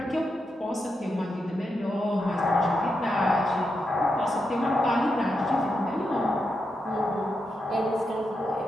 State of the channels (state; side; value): normal; both; correlation 0.85